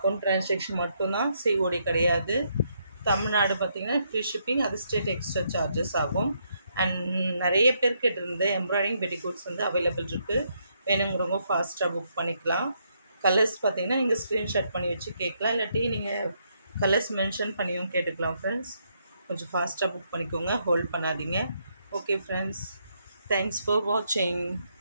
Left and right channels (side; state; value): both; inverted; correlation -0.75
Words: transaction மட்டும்தான், சிஓடி கிடையாது. தமிழ்நாடு பார்த்திங்கன்னா ஃப்ரீ ஷிப்பிங், அது ஸ்டேட் எக்ஸ்ட்ரா சார்ஜஸ் ஆகும். அண்ட் நிறைய பேர் கேட்டிருந்த எம்ப்ராய்டிங் பெட்டிகோட்ஸ் வந்து அவைலபிள் இருக்குது. வேணுங்கிறவங்க ஃபாஸ்ட்டாக புக் பண்ணிக்கலாம். கலர்ஸ் பார்த்திங்கன்னா நீங்கள் ஸ்க்ரீன்ஷாட் பண்ணி வச்சு கேட்கலாம், இல்லாட்டி நீங்கள் கலர்ஸ் மென்ஷன் பண்ணியும் கேட்டுக்கலாம் ஃப்ரெண்ட்ஸ். கொஞ்சம் ஃபாஸ்ட்டாக புக் பண்ணிக்கோங்க, ஹோல்ட் பண்ணாதீங்க. ஓகே ஃப்ரெண்ட்ஸ், தேங்க்ஸ் ஃபார் வாட்சிங்.